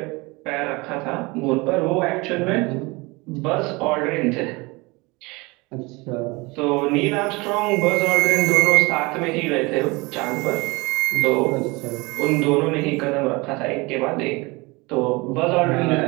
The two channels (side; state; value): left; quieter; 24.9 dB